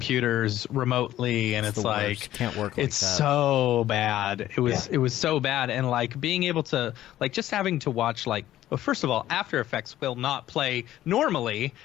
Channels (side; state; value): right; quieter; 13.4 dB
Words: remotely, and it's like can't work like it's that. So bad. It was so bad, and like being able to like just having to watch like Well, first of all, After Effects will not play normally,